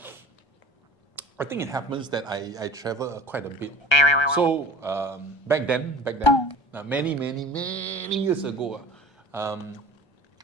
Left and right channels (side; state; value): right; late; 1.3 ms